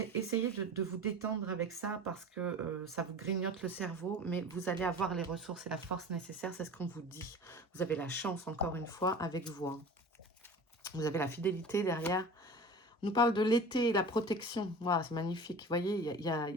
Essayez de vous détendre avec ça parce que ça vous grignote le cerveau. Mais vous allez avoir les ressources et la force nécessaires. C'est ce qu'on vous dit. Vous avez la chance, encore une fois, avec vous. Hein. Vous avez la fidélité derrière. On nous parle de l'été et la protection. Voilà, c'est magnifique. Vous voyez, il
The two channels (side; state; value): both; normal; correlation 0.37